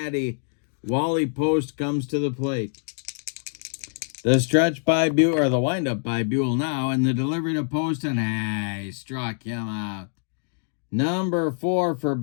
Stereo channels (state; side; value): silent; right; 62 dB below the other